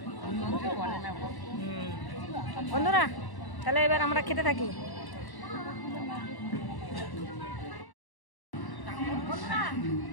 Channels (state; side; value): late; right; 1.1 ms